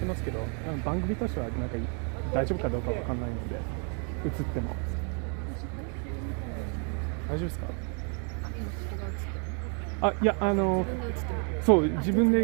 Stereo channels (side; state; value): left; quieter; 38.9 dB